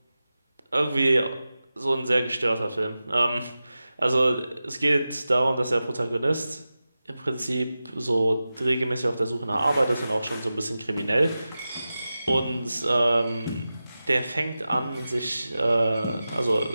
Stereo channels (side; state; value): both; inverted; correlation -0.94